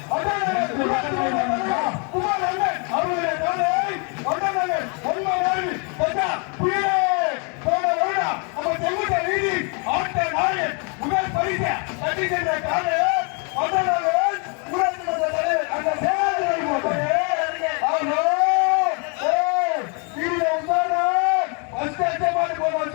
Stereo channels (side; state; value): right; quieter; 36.2 dB